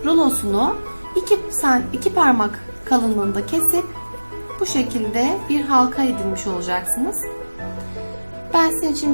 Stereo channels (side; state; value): both; inverted; correlation -1.00